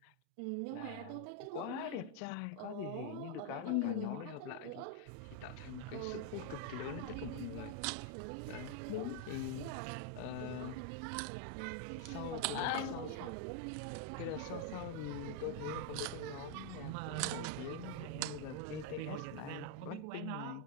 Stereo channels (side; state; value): both; different; correlation 0.00